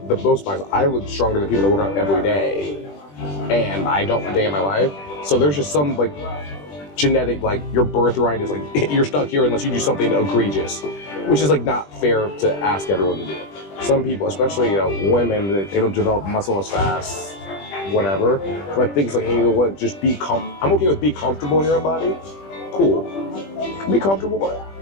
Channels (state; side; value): late; right; 20 ms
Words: the most biased. I look stronger than people that work out every day, and I don't a day in my life. So there's just some like genetic, like, your birthright is like you're stuck here unless you do something egregious, which is like not fair to ask everyone to do. Some people, especially women, they don't develop muscle as fast, whatever. So I think it's like, hey, you know what? Just be I'm okay with be comfortable in your own body. Cool. Be comfortable with it.